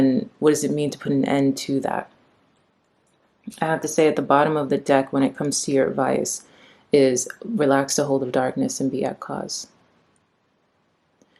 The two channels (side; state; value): both; identical; correlation 1.00